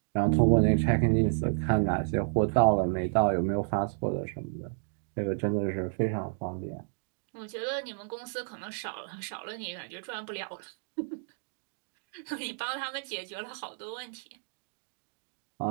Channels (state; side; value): silent; left; digital silence